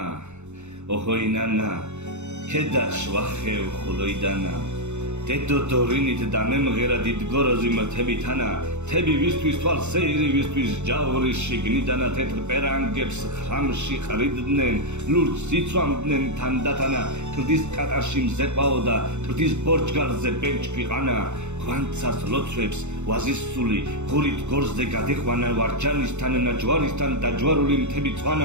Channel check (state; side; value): late; left; 0.83 ms